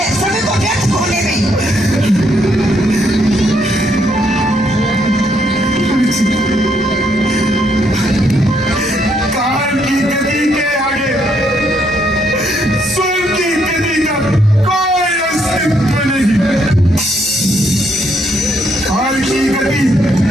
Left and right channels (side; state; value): both; normal; correlation 0.73